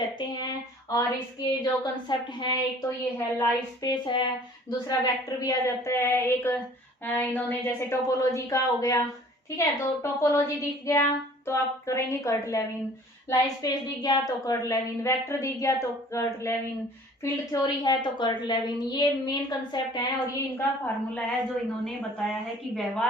हैं। और इसके जो कंसेप्ट हैं, एक तो ये है लाइफ स्पेस है, दूसरा वेक्टर भी आ जाता है, एक इन्होंने जैसे टोपोलॉजी का हो गया, ठीक है। तो टोपोलॉजी दिख गया तो आप करेंगे कर्ट लेविन, लाइफ स्पेस दिख गया तो कर्ट लेविन, वेक्टर दिख गया तो कर्ट लेविन, फील्ड थ्योरी है तो कर्ट लेविन। ये मेन कंसेप्ट है और ये इनका फार्मूला है जो इन्होंने बताया है कि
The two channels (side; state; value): both; normal; correlation 0.51